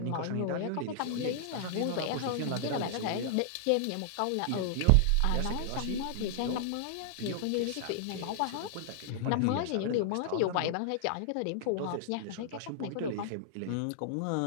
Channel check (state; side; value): different; both; correlation -0.01